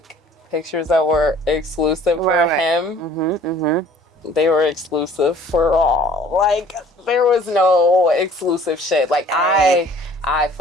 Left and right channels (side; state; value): both; normal; correlation 0.52